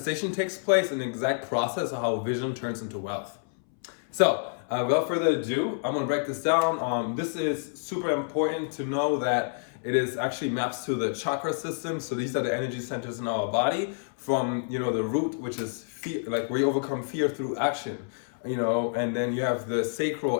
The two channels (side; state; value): right; silent; 59 dB below the other